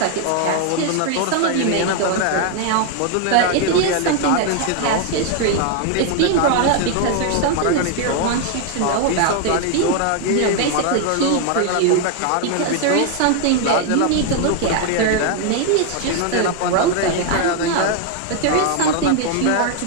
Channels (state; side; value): different; both; correlation 0.00